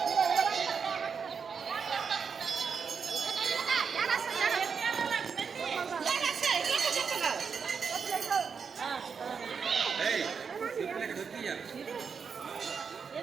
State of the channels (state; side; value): quieter; left; 6.0 dB